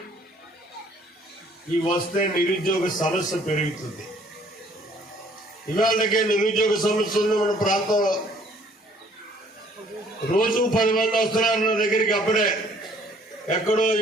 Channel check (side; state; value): both; normal; correlation 0.60